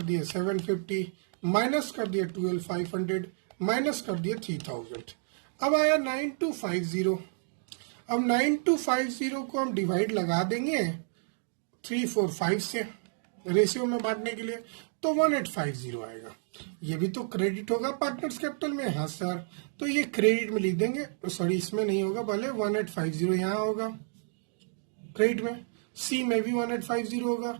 दिए 750, माइनस कर दिए 12,500, माइनस कर दिए 3,000। अब आया 9250। अब 9250 को हम डिवाइड लगा देंगे 345 से रेशियो में बांटने के लिए, तो 1850 आएगा। ये भी तो क्रेडिट होगा पार्टनर्स कैपिटल में। हाँ सर, तो ये क्रेडिट में लिख देंगे, सॉरी इसमें नहीं होगा, भले 1850 यहाँ होगा क्रेडिट में, सी में भी 1850 होगा,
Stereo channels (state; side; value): silent; left; digital silence